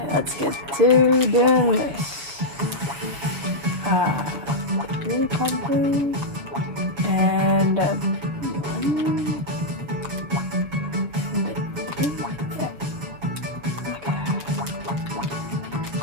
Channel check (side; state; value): left; late; 7.3 ms